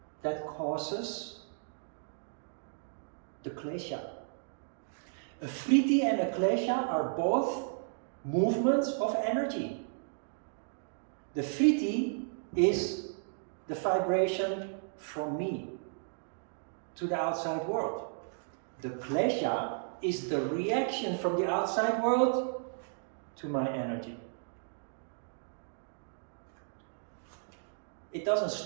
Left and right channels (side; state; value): left; silent; digital silence